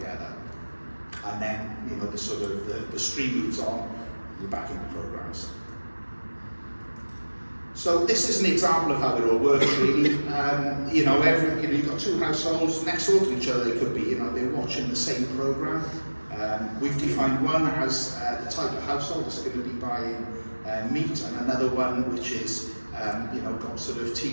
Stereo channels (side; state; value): both; inverted; correlation -1.00